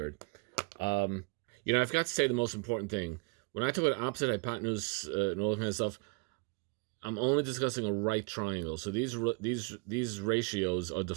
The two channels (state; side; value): quieter; left; 31.7 dB